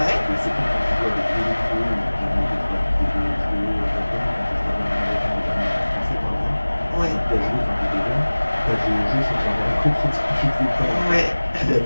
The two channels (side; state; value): both; inverted; correlation -1.00